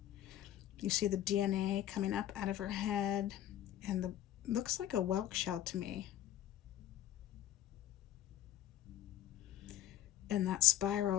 You see the DNA coming up out of her head, and the looks like a whelk shell to me. And that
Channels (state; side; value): quieter; right; 12.2 dB